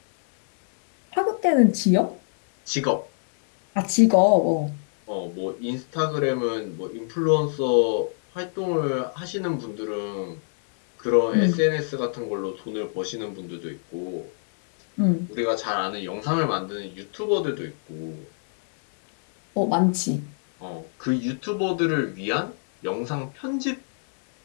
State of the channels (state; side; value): silent; right; 62 dB below the other